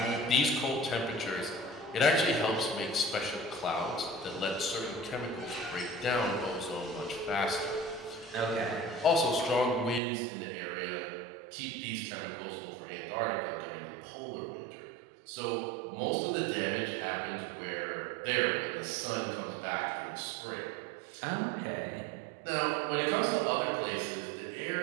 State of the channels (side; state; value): left; drops out; at 10.0 s